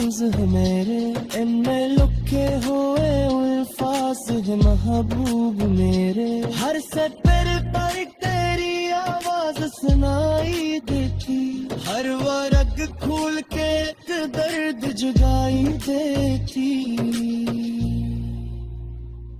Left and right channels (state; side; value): identical; both; correlation 1.00